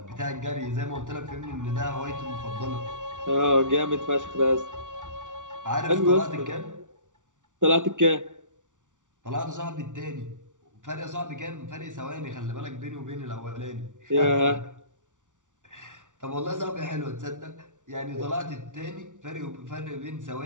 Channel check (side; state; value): left; late; 0.87 ms